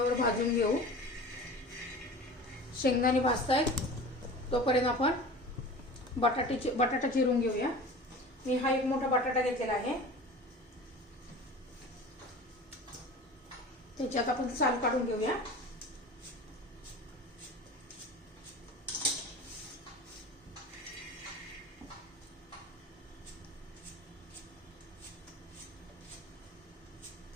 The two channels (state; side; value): normal; both; correlation 0.37